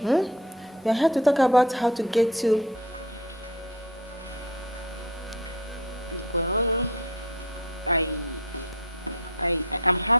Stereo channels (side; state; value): both; normal; correlation 0.34